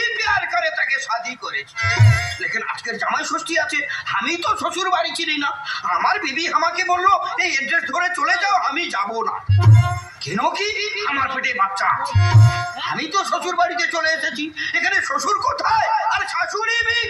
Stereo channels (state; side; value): identical; both; correlation 1.00